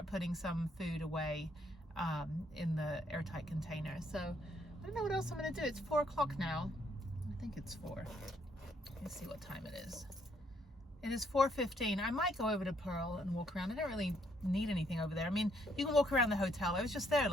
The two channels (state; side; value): normal; both; correlation 0.70